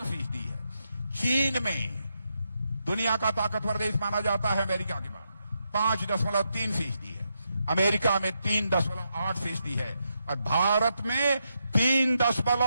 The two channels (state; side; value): inverted; both; correlation -0.83